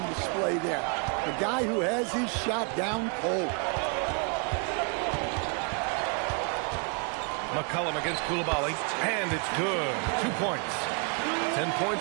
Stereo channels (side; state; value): left; quieter; 36.9 dB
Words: display there. A guy who has his shot down cold. McCollum against Coulibaly, and it's good. 2 points. 10